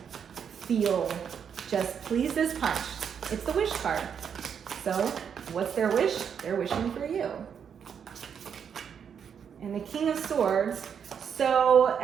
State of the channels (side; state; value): left; quieter; 7.5 dB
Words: feel just please this punch. It's the wish card. So what's their wish? They're wishing for you. And the King of Swords,